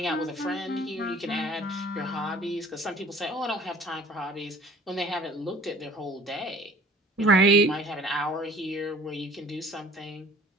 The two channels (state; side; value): normal; both; correlation 0.50